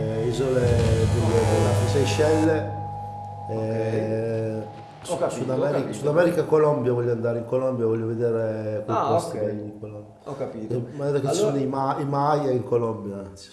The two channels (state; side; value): identical; both; correlation 1.00